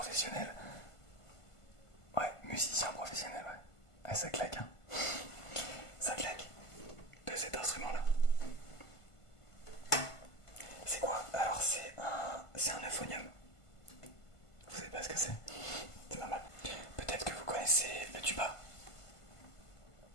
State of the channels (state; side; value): late; right; 1.5 ms